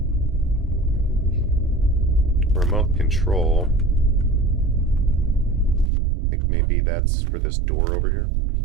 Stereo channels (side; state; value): left; drops out; at 5.9 s